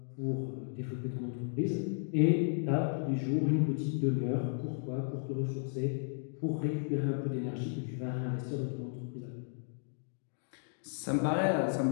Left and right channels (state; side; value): silent; right; digital silence